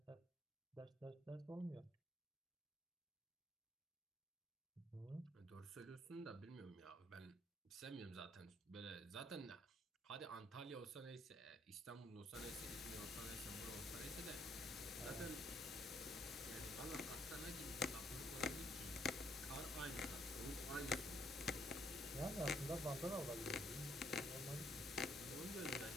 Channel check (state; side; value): normal; both; correlation 0.69